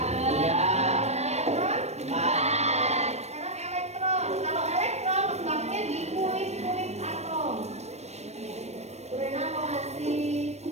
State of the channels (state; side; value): late; left; 0.31 ms